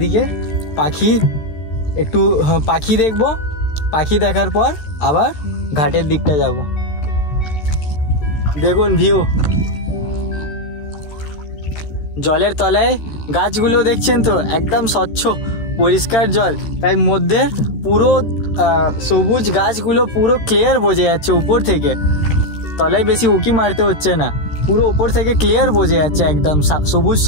একটু পাখি দেখব, পাখি দেখার পর আবার ঘাটের দিকটা যাব। দেখুন ভিউ, জলের তলায় গাছগুলো দেখছেন তো, একদম স্বচ্ছ পরিষ্কার জল, তাই মধ্যে পুরো সবুজ গাছগুলো পুরো ক্লিয়ার বোঝা যাচ্ছে উপর থেকে। তলায় বেশি উঁকি মারতে হচ্ছে না, পুরো উপর থেকে ক্লিয়ার বোঝা যাচ্ছে, একদম সবুজ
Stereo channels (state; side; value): late; right; 13 ms